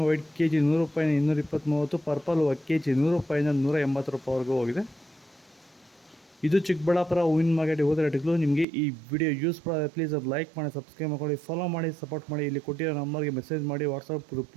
ವೈಟ್ KG 100 ರೂಪಾಯಿಂದ 220, 30, ಪರ್ಪಲ್ KG 100 ರೂಪಾಯಿಂದ 180 ರೂಪಾಯಿವರೆಗೂ ಹೋಗಿದೆ. ಇದು ಚಿಕ್ಕಬಳ್ಳಾಪುರ ಹೂವಿನ ಮಾರ್ಕೆಟ್ ಹೋದ ರೇಟ್ಗಳು. ನಿಮಗೆ ಈ ವಿಡಿಯೋ ಯೂಸ್ಫುಲ್ ಆದರೆ ಪ್ಲೀಸ್ ಅದು ಲೈಕ್ ಮಾಡಿ, ಸಬ್ಸ್ಕ್ರೈಬ್ ಮಾಡಿ, ಫಾಲೋ ಮಾಡಿ, ಸಪೋರ್ಟ್ ಮಾಡಿ. ಇಲ್ಲಿ ಕೊಟ್ಟಿರೋ ನಂಬರ್ಗೆ ಮೆಸೇಜ್ ಮಾಡಿ, ವಾಟ್ಸಪ್ ಗ್ರೂಪ್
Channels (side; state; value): left; drops out; at 8.7 s